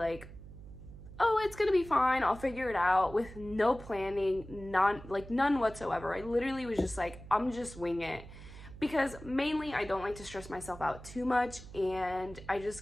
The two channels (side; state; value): right; noise; hum, 15 dB below the sound